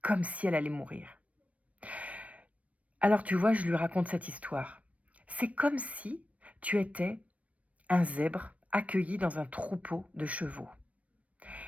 comme si elle allait mourir. Alors tu vois, je lui raconte cette histoire. C'est comme si tu étais un zèbre accueilli dans un troupeau de chevaux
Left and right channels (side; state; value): left; late; 0.066 ms